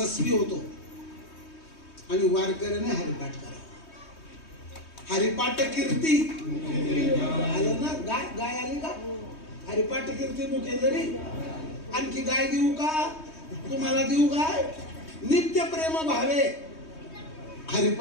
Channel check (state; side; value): late; right; 3.2 ms